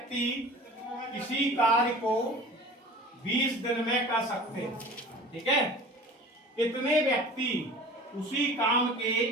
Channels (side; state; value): both; normal; correlation 0.41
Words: किसी कार्य को 20 दिन में कर सकते हैं। ठीक है, कितने व्यक्ति उसी काम के